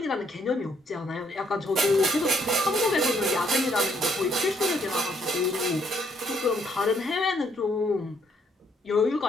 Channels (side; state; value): both; normal; correlation 0.69